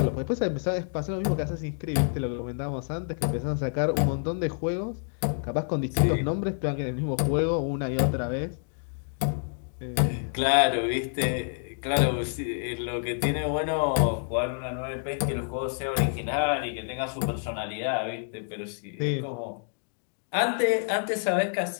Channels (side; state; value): right; silent; digital silence